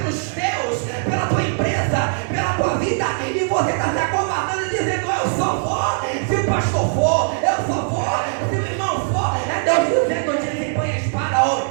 teus, pela tua empresa, pela tua vida. E você está se acovardando e dizendo: eu só vou se o pastor for, eu só vou se o irmão for. É Deus dizendo: desembanha a espada, ó,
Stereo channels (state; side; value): silent; left; 62 dB below the other